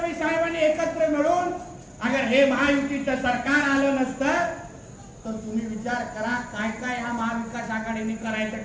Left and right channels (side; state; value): both; identical; correlation 1.00